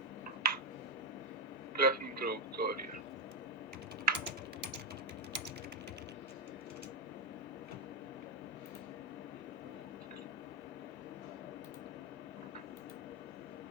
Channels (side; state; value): both; normal; correlation 0.03